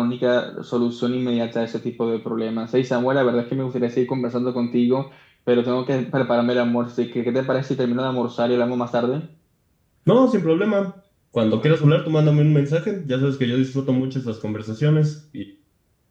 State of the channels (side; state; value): both; identical; correlation 1.00